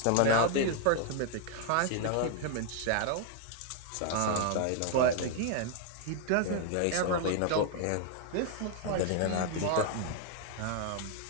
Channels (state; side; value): different; both; correlation 0.00